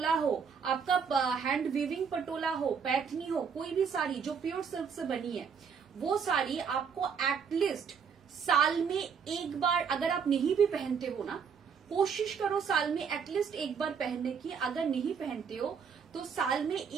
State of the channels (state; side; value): quieter; left; 6.5 dB